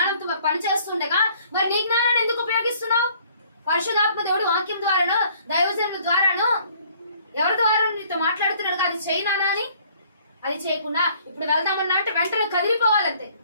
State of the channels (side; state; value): both; inverted; correlation -0.59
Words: పని చేస్తుండగా మరి నీ జ్ఞానాన్ని ఎందుకు ఉపయోగిస్తున్నావు? పరిశుద్ధాత్మ దేవుడు వాక్యం ద్వారానో దైవజనుల ద్వారానో ఎవరి ద్వారా నీతో మాట్లాడుతున్నాడు. అది చేయనానా అని అది చేయకుండా ఇప్పుడు వెళ్దామన్నా అంటే వెంటనే కదిలిపోవాలంతే.